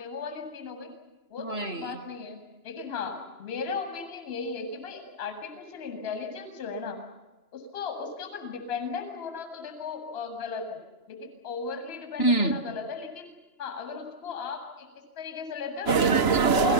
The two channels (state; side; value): late; right; 2.9 ms